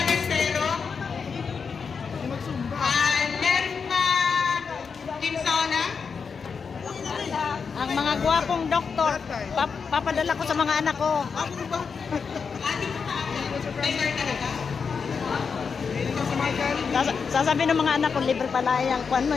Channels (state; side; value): quieter; right; 5.7 dB